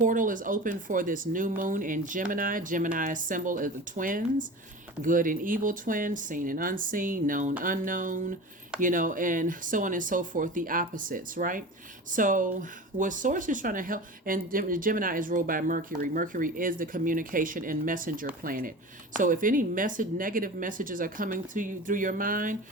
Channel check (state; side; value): normal; both; correlation 0.33